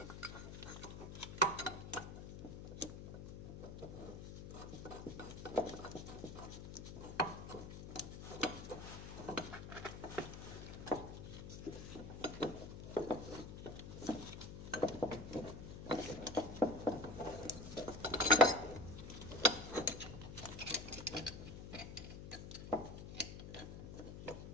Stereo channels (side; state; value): left; noise; hum, 9 dB below the sound